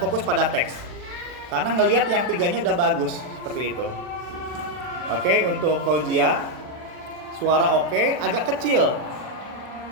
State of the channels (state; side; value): late; left; 40 ms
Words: pada teks. Karena ngelihat yang 3-nya udah bagus seperti itu. Oke, untuk Fauzia suara oke, agak kecil.